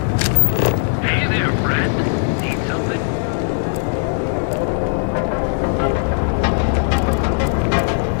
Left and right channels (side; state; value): right; silent; 60 dB below the other